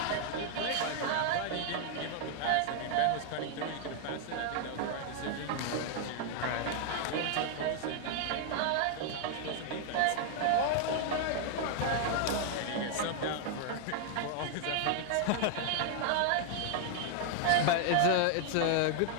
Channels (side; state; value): both; different; correlation 0.00